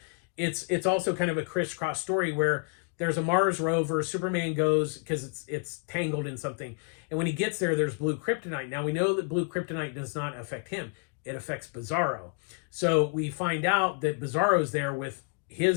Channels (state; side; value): quieter; right; 36.7 dB